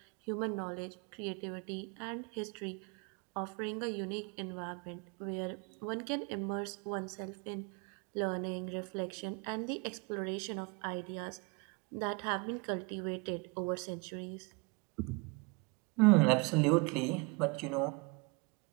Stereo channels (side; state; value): left; quieter; 28.5 dB